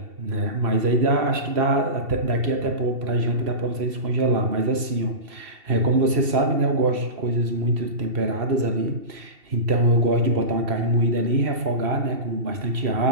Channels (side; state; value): left; late; 2.7 ms